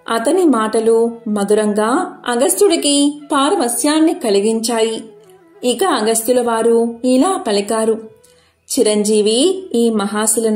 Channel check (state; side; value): identical; both; correlation 1.00